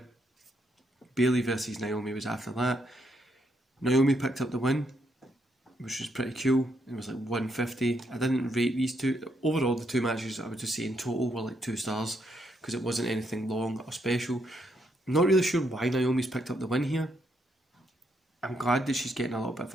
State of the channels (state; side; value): normal; both; correlation 0.76